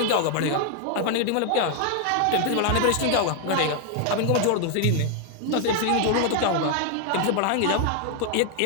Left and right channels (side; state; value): both; different; correlation 0.00